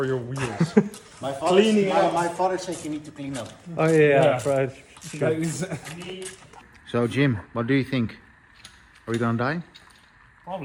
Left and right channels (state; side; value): identical; both; correlation 1.00